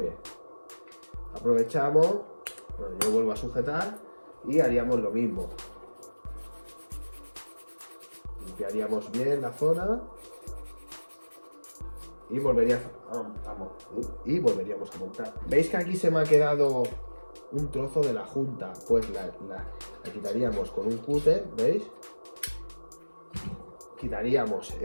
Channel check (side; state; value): both; inverted; correlation -1.00